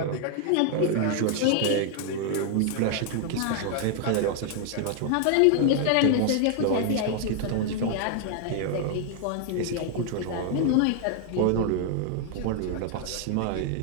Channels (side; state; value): both; different; correlation 0.00